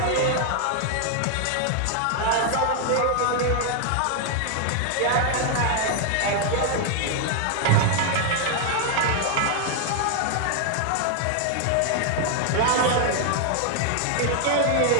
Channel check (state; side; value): different; both; correlation 0.00